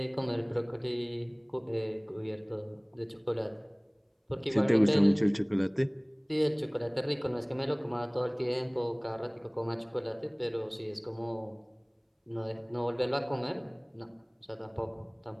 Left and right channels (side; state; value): both; identical; correlation 1.00